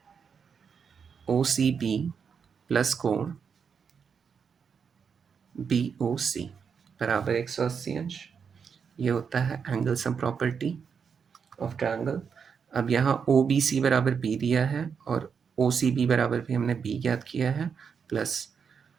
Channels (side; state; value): left; quieter; 6.4 dB